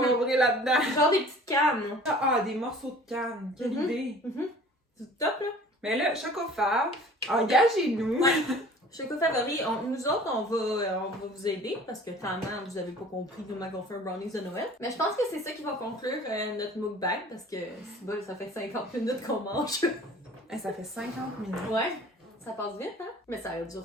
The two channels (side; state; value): both; normal; correlation 0.47